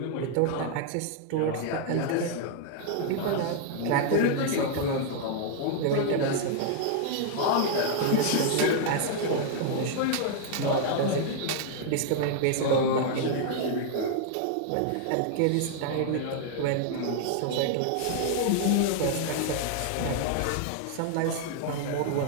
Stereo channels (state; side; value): different; both; correlation 0.00